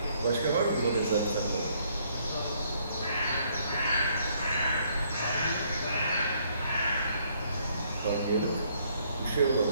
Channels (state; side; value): inverted; both; correlation -0.67